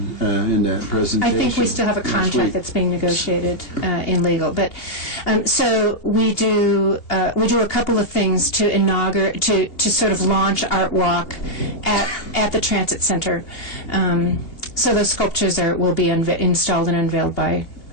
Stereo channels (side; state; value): right; late; 2.8 ms